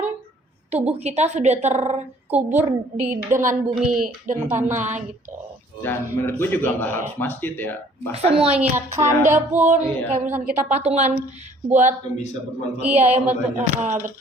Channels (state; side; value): normal; both; correlation 0.57